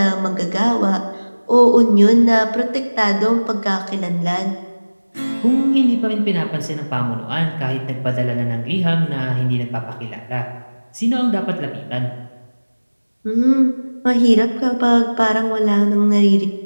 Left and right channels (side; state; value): both; inverted; correlation -1.00